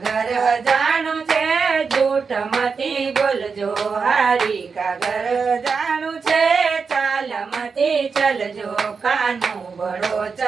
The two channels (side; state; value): left; quieter; 5.3 dB